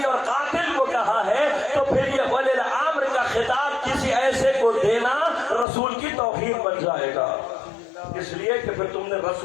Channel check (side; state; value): right; drops out; at 5.7 s